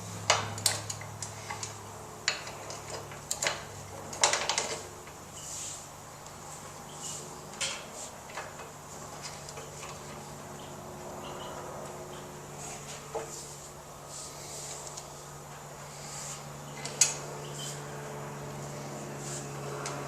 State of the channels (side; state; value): both; identical; correlation 1.00